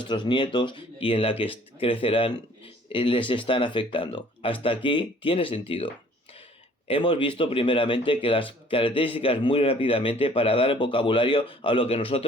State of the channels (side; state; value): both; normal; correlation 0.55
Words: nietos y en la que crecerán, les están afectando. Hasta aquí tiene sentido. Hemos visto primeramente que las características muy rápidamente para dar el vocabulario a lo que